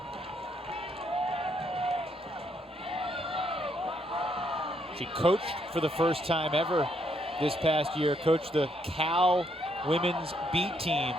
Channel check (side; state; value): both; normal; correlation 0.73